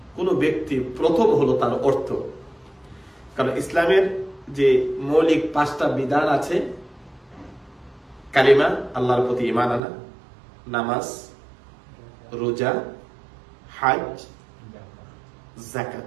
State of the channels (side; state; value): left; drops out; at 9.8 s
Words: কোন ব্যক্তি, প্রথম হলো তার অর্থ। কারণ ইসলামের যে মৌলিক 5টা বিধান আছে, কালিমা, আল্লাহর প্রতি ঈমান আনা, নামাজ, রোজা, হজ,